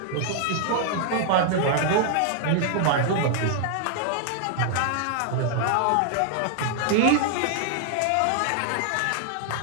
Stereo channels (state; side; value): different; both; correlation 0.00